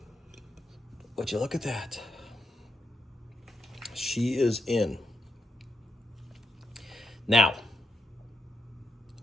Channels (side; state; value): both; normal; correlation 0.84